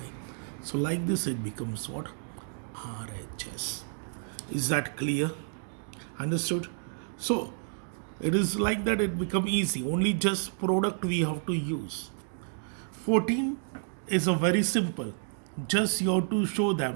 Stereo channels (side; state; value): left; silent; digital silence